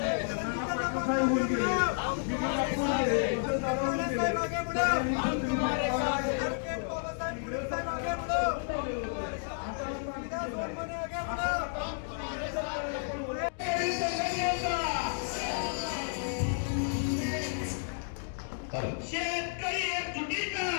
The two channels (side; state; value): right; silent; digital silence